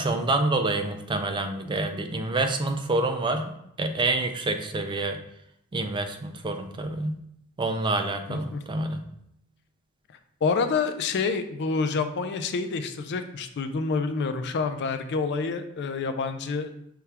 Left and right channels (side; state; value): both; normal; correlation 0.25